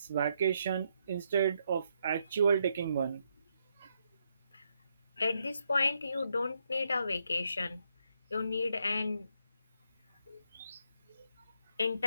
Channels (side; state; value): both; inverted; correlation -0.78